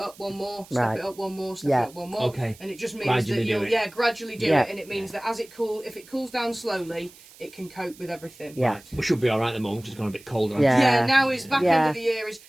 one more, step it up one more, step it up one more, and it just means gradually that you'll gradually do it, and it means that as it if it cools down slowly, it can cope with everything. We should be all right at the moment. It's gone a bit colder. Now it's back end of the year.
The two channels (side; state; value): right; noise; hiss, 23 dB below the sound